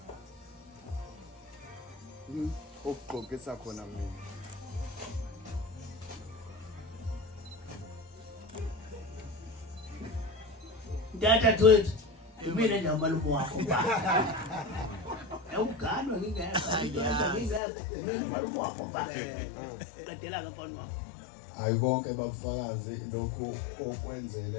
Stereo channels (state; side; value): drops out; right; at 17.6 s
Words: okugqokisa khona mina Data twethu mina namalume wakho baba. Awuganwa ngingekho mina namalume wakho baba. Qedela ke mfana wakho. hayi konke bafakazi lokho